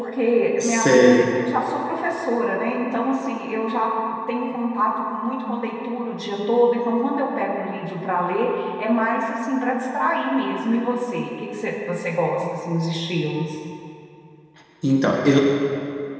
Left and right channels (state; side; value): identical; both; correlation 1.00